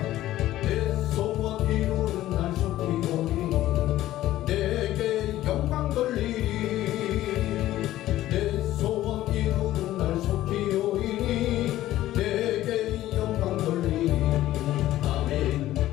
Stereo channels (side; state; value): right; quieter; 14.5 dB